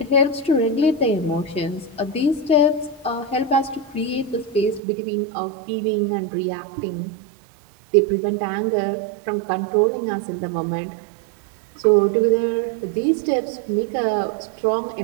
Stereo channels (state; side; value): drops out; left; at 4.8 s